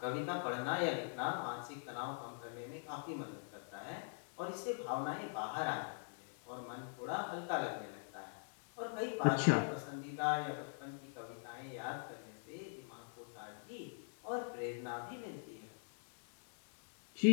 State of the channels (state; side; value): silent; right; digital silence